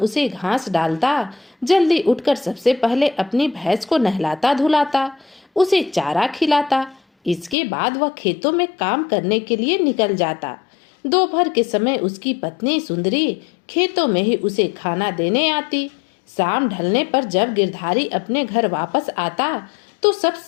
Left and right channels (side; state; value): right; drops out; at 7.6 s